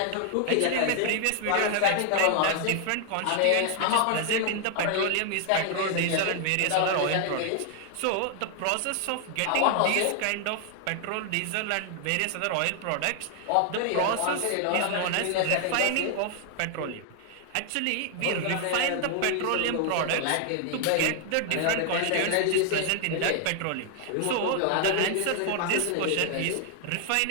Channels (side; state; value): both; different; correlation 0.00